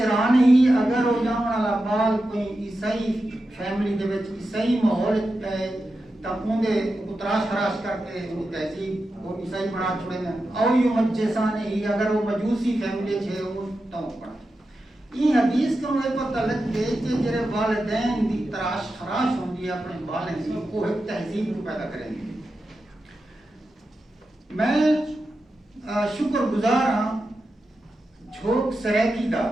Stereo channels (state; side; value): normal; both; correlation 0.90